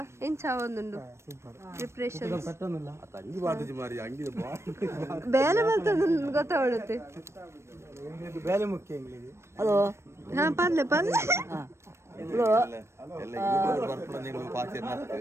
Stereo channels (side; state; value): left; late; 0.13 ms